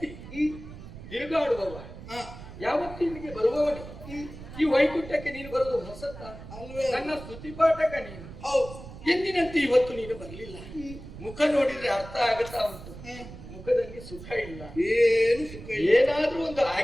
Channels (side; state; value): right; noise; rumble, 14 dB below the sound